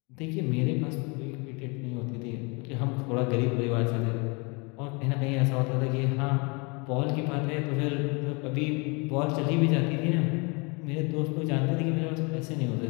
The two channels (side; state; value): right; quieter; 30.2 dB